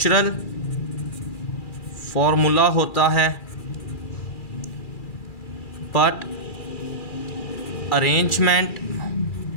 फॉर्मूला होता है but arrangement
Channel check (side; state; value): right; late; 2.4 ms